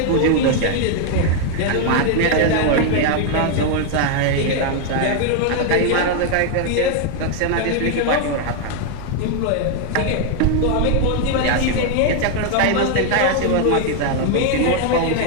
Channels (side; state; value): both; different; correlation 0.00